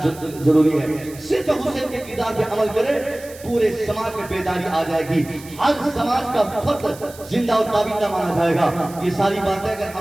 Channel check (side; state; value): right; noise; hiss, 19 dB below the sound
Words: जरूरी है। सिर्फ हुसैन के किरदार पे अमल करें, पूरे समाज में बेदारी आ जाएगी, हर समाज का फर्द जिंदा और ताबिंदा माना जाएगा। ये सारी बातें अगर